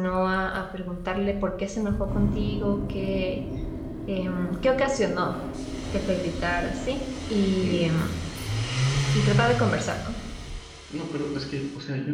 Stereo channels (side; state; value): both; identical; correlation 1.00